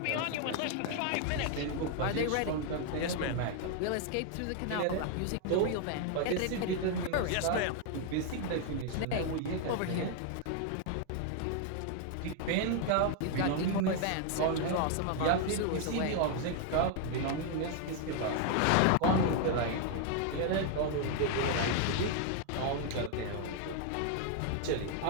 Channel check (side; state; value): both; different; correlation 0.00